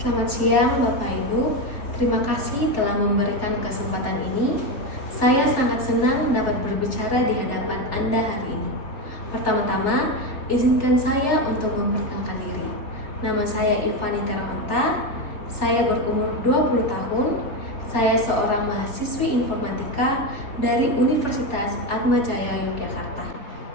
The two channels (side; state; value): right; late; 3.2 ms